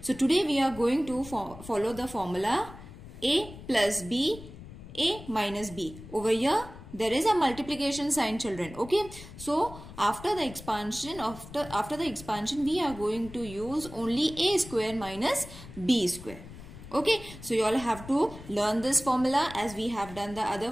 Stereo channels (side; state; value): left; noise; rumble, 15 dB below the sound